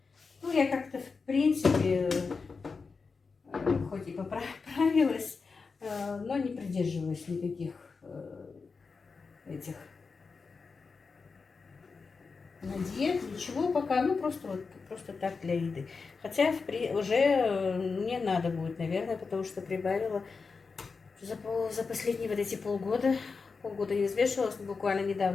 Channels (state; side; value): quieter; right; 4.7 dB